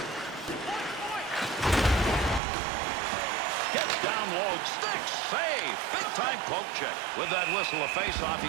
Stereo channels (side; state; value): left; drops out; at 2.4 s